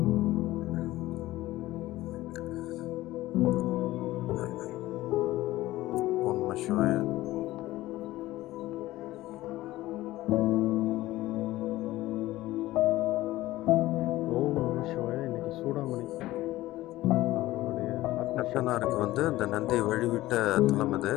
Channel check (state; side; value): quieter; right; 16.8 dB